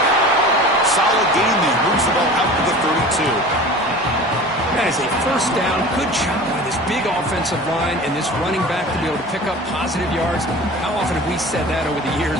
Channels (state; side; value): noise; left; hum, 28 dB below the sound